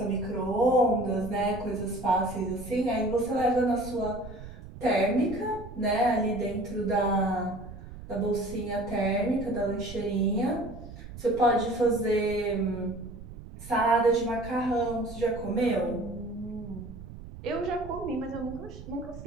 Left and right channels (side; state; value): right; noise; rumble, 13 dB below the sound